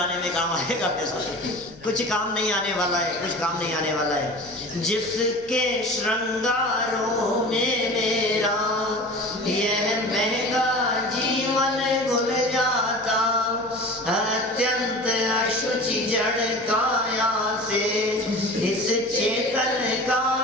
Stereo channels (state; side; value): noise; left; hum, 22 dB below the sound